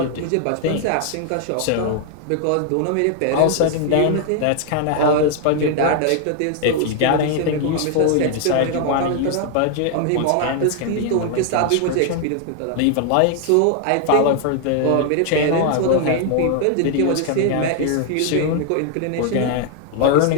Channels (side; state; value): both; different; correlation 0.00